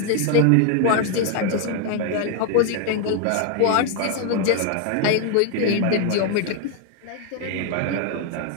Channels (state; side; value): different; both; correlation 0.00